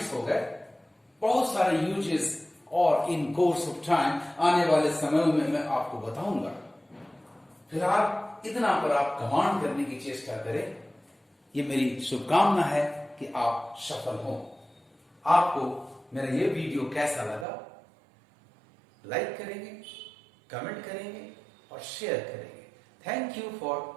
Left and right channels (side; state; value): left; drops out; at 17.4 s